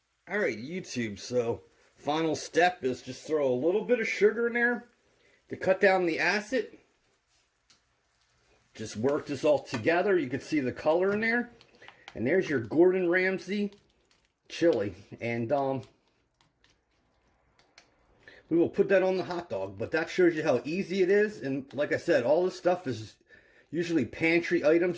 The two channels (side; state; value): both; identical; correlation 1.00